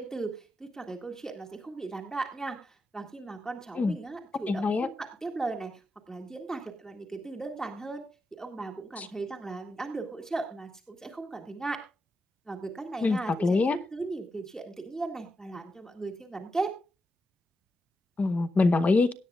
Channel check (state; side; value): normal; both; correlation 0.87